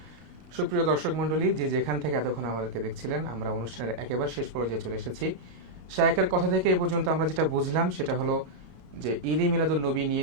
সুপ্রিয় দর্শক মণ্ডলী, যে যেখান থেকে এতক্ষণ আমাদেরকে দেখছিলেন, আমরা অনুষ্ঠানের একেবারে শেষ পর্যায়ে চলে এসেছি। শায়েখের কথা থেকে এ পর্যন্ত আমরা যেটা বুঝলাম সেটা হলো যে ঈদে মিলাদুন নবী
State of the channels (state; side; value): late; left; 32 ms